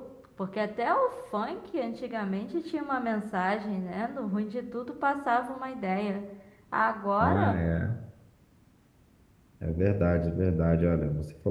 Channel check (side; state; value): both; identical; correlation 1.00